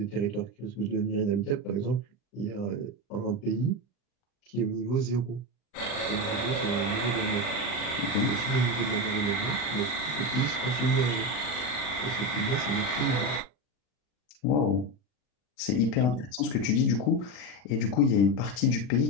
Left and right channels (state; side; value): late; right; 40 ms